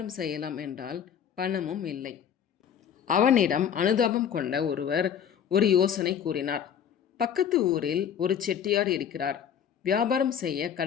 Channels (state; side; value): quieter; right; 8.5 dB